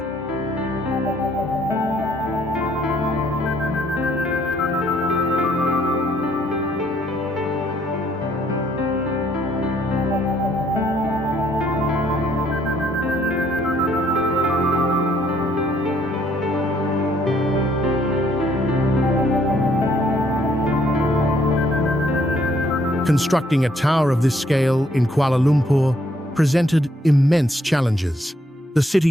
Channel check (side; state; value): both; normal; correlation 0.67